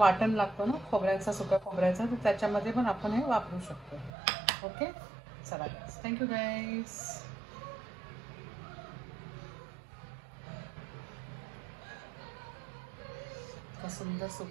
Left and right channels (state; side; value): drops out; left; at 4.1 s